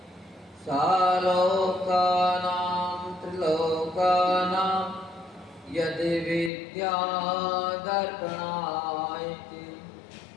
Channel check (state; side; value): drops out; right; at 6.5 s